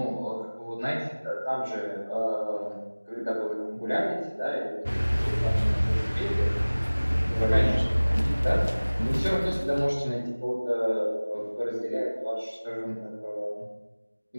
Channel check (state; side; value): inverted; both; correlation -1.00